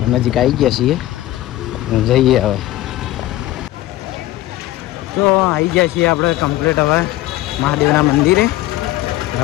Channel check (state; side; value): quieter; right; 15.6 dB